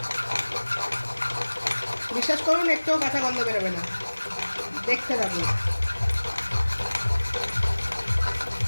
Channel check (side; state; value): both; inverted; correlation -1.00